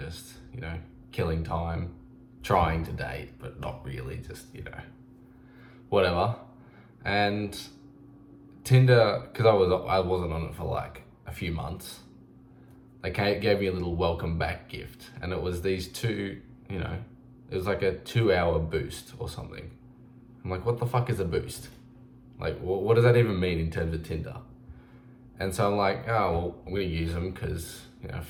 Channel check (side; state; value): both; identical; correlation 1.00